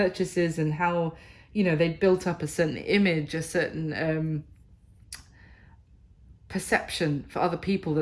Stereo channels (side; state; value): both; identical; correlation 1.00